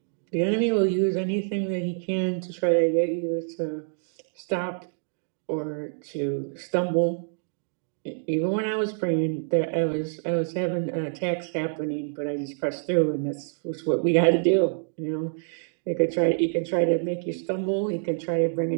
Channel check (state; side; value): silent; left; digital silence